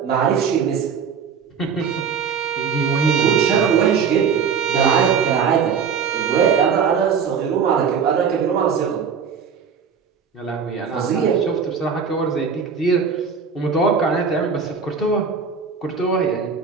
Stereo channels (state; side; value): quieter; left; 6.3 dB